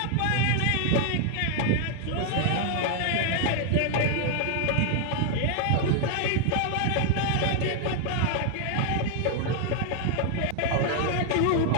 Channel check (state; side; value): different; both; correlation 0.00